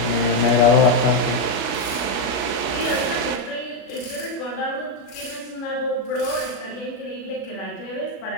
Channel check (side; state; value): right; late; 36 ms